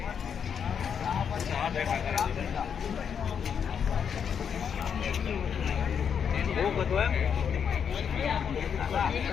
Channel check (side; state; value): right; quieter; 7.4 dB